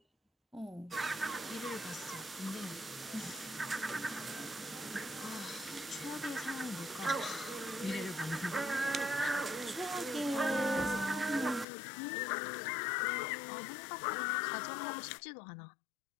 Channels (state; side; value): drops out; right; at 11.7 s